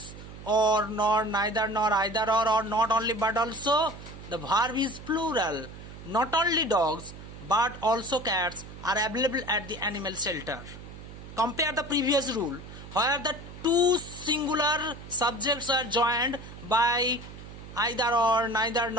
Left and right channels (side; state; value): right; noise; hum, 14 dB below the sound